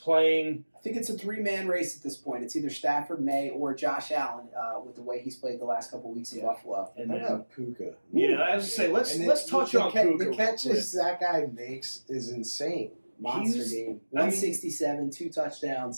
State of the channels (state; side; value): inverted; both; correlation -1.00